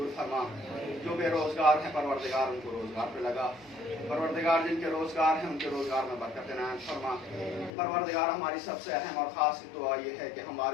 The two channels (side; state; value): right; drops out; at 7.7 s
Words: فرما، جو بے روزگار ہیں پروردگار ان کو روزگار پہ لگا، پروردگار جن کے روزگار ہیں ان کے روزگار میں برکت عنایت فرما۔ پروردگار ہماری سب سے اہم اور خاص دعا یہ ہے کہ ہم